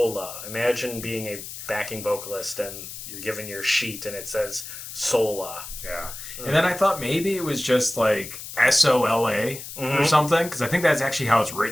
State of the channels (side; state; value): left; noise; hiss, 11 dB below the sound